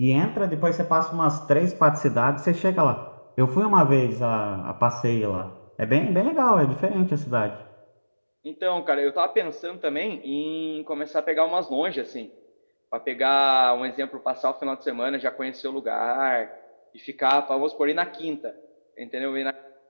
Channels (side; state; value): both; inverted; correlation -1.00